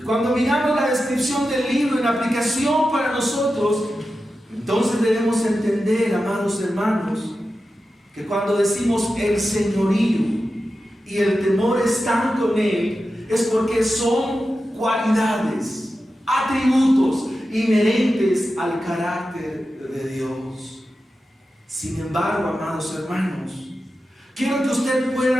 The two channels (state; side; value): normal; both; correlation 0.92